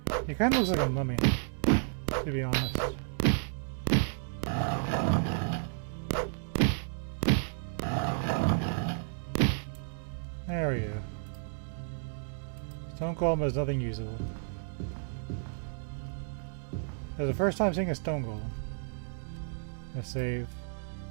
He kind of looks like a mummy, to be honest. There we go. Stone golem has nothing usable. This is the first time seeing a stone golem. A save.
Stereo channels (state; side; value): silent; left; digital silence